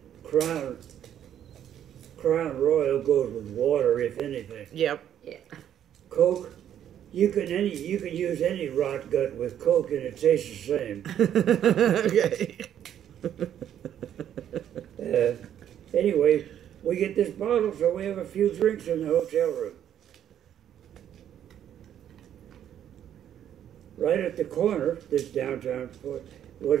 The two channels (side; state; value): left; quieter; 10.3 dB